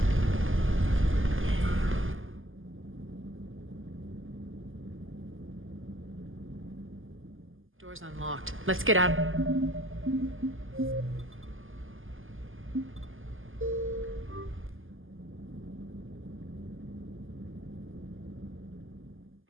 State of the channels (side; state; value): left; late; 0.59 ms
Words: Door's unlocked. Let's get out.